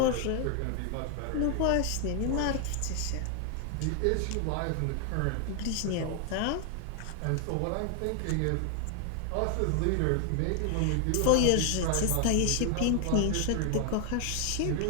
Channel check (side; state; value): both; different; correlation 0.00